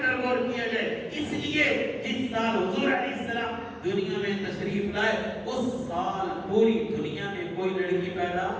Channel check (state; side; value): identical; both; correlation 1.00